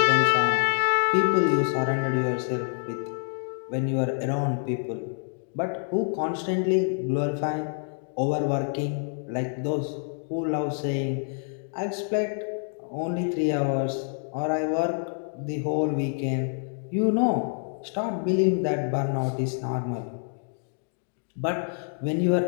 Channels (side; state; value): right; silent; 60 dB below the other